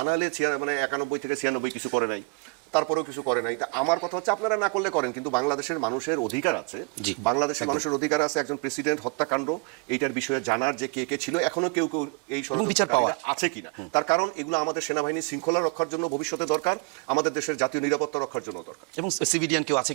নাহলে মানে 91 থেকে 96 কিছু করে নাই, তারপরেও কিছু করে নাই। তা আমার কথা হচ্ছে আপনারা না করলে করেন, কিন্তু বাংলাদেশের মানুষের অধিকার আছে, বাংলাদেশের মানুষের অধিকার আছে একজন প্রেসিডেন্ট হত্যাকাণ্ড এইটার বিষয়ে জানার যে কে কে ছিল, এখনো কেউ কেউ এই বিচার পাওয়া আছে কিনা। তার কারণ এগুলো আমাদের সেনাবাহিনী শৃঙ্খলা রক্ষার জন্য ভবিষ্যতে দরকার, আমাদের দেশের জাতীয় নিরাপত্তা রক্ষার জন্য দরকার, এবং সিভিলিয়ান কেউ আছে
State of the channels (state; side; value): quieter; left; 32.8 dB